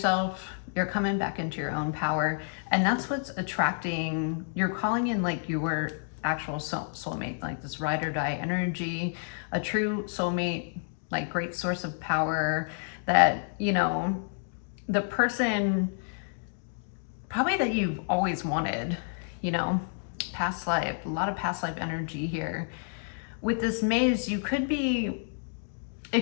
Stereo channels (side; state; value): right; silent; digital silence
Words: you're coming back into your own power. And that's what's attracting, you're calling in like your actual soulmate, like this ride or die energy, a true soulmate, like great source of power that, you know, the person probably that you've always wanted, you know, past life, a lot of past life energy here. With this maze, it could